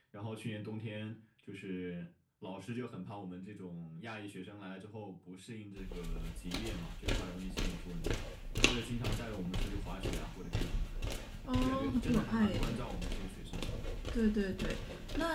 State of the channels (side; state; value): both; identical; correlation 1.00